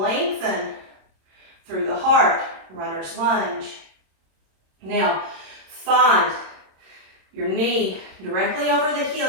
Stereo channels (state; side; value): late; left; 26 ms